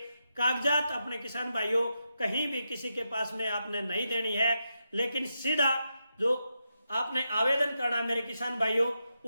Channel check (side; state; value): both; inverted; correlation -0.86